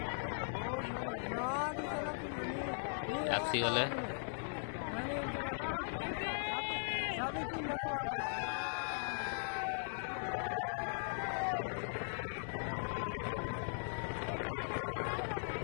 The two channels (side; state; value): right; silent; digital silence